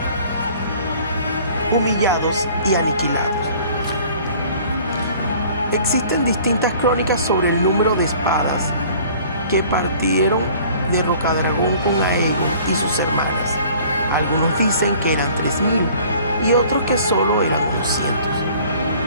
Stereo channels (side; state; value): both; inverted; correlation -0.51